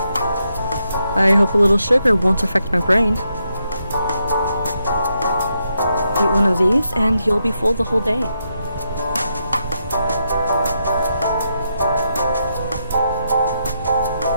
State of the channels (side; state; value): both; inverted; correlation -0.81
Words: I hope a little sugar won't affect my brain. Eat one of these and you'll be full the whole day.